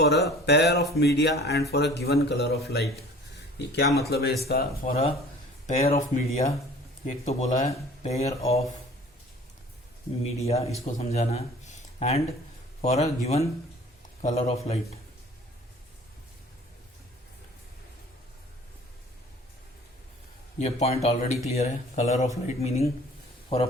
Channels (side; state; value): both; normal; correlation 0.47